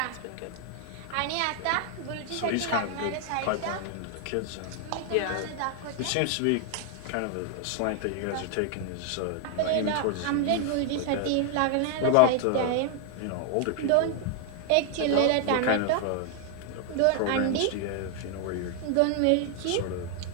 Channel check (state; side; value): different; both; correlation 0.00